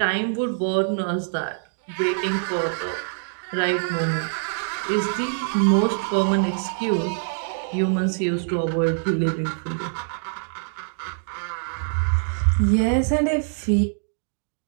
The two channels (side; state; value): left; silent; digital silence